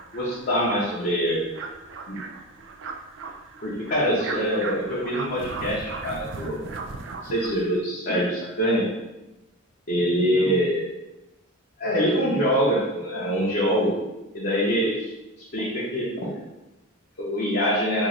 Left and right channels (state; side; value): normal; both; correlation 0.27